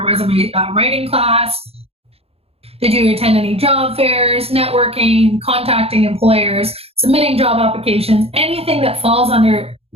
resume writing class? Did you attend any job fairs, networking, contacting employers, submitting job applications, anything that falls under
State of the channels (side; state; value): left; late; 0.29 ms